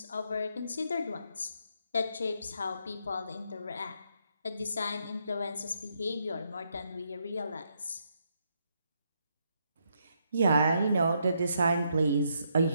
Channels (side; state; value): both; inverted; correlation -0.77